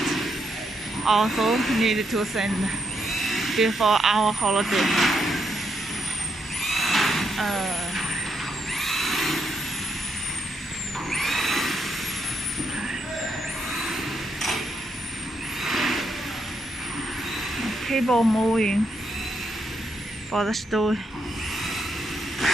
also need to send before our holiday. Cable moving for the store.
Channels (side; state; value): both; normal; correlation 0.79